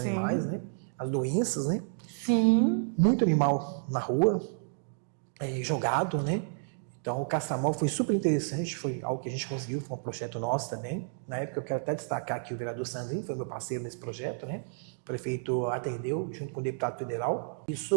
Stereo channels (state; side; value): silent; left; digital silence